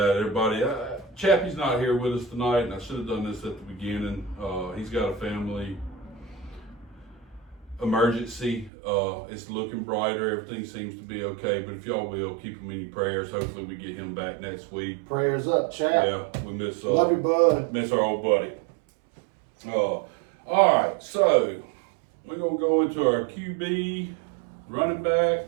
everybody, Chappie's not here with us tonight, and I should have done this at the beginning. He's got a family emergency. It's looking brighter. Everything seems to be okay, but if y'all will, keep him in your prayers. Hopefully we get him back next week. Prayers up, chap. Yeah, we miss Love you, bud. miss our old buddy. All right, so we're going to go into our QB, running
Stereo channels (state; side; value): drops out; left; at 8.7 s